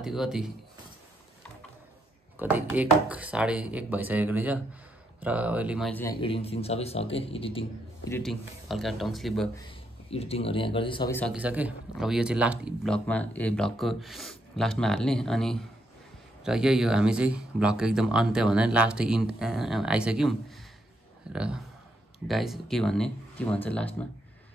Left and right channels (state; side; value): normal; both; correlation 0.78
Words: कति 1 साढे 1 भइसकेको रहेछ र अहिले मैले चाहिँ यहाँ एडिटिङ सबै सकेँ एडिटिङ हल्का टङ स्लिप भयो एडिटिङहरू यहाँ गर्दै सबै सकिसकेँ अब यो चाहिँ लास्ट भ्लगको लास्टमा हाल्ने अनि र यही हो हामी चाहिँ भ्लगको एकदम अन्त्य भन्दा लास्ट आइसक्यौँ र गाइस के भन्छ लास्टमा